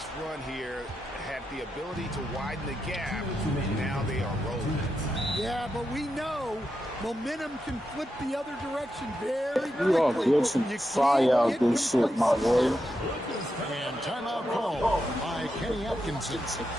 run here. Had the ability to widen the gap. Now they are rolling. Yeah, but we know momentum can flip the other direction very quickly. You all get some fire out this shit, my boy. And timeout call by Kenny Atkinson.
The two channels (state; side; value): normal; both; correlation 0.86